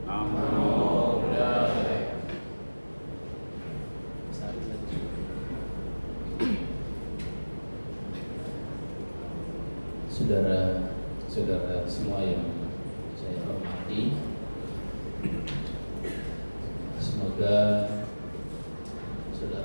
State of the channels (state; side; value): inverted; both; correlation -1.00